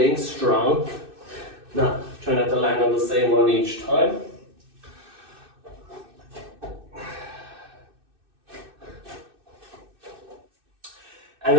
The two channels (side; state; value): left; late; 2.6 ms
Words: strong. Now, try not to land on the same one each time. And